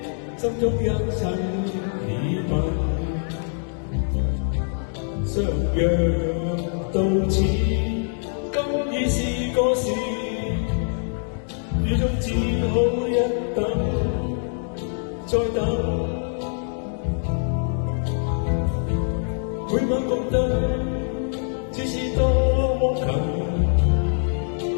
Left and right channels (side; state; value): right; silent; 63 dB below the other